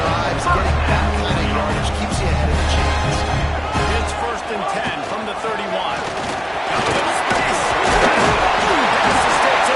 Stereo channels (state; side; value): identical; both; correlation 1.00